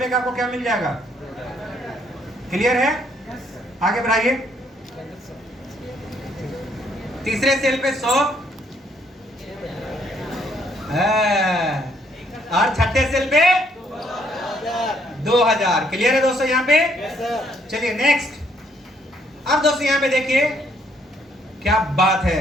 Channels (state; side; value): normal; both; correlation 0.69